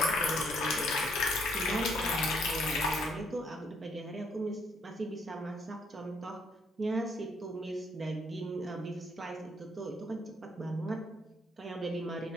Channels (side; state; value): both; normal; correlation 0.69